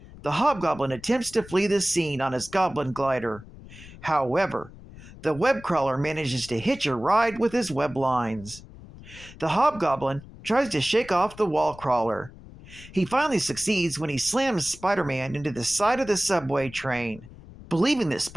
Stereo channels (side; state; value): left; noise; rumble, 18 dB below the sound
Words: the Hobgoblin attempts to flee the scene on his goblin glider. However, the web crawler manages to hitch a ride with his web lines. The Hobgoblin tries to shake off the wall crawler. He finally succeeds when he slams Spider-Man into the side of the subway train. Believing that